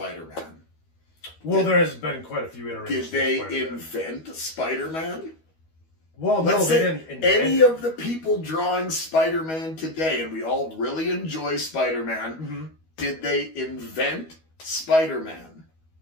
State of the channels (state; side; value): late; right; 12 ms